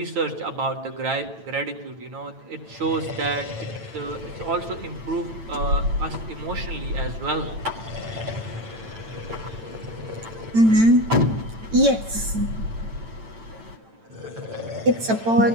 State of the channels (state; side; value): late; left; 8.9 ms